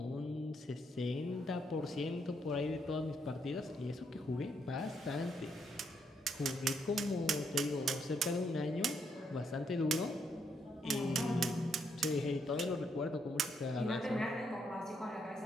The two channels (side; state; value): both; normal; correlation 0.75